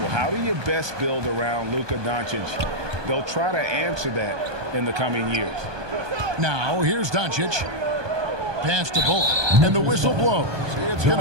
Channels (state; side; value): late; left; 1.2 ms